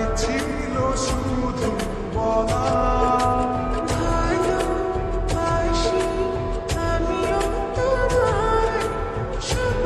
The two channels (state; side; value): identical; both; correlation 1.00